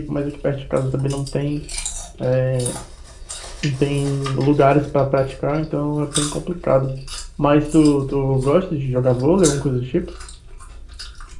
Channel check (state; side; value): identical; both; correlation 1.00